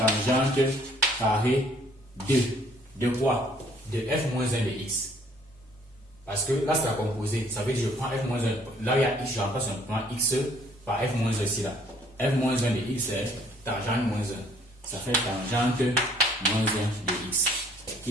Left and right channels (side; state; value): both; normal; correlation 0.60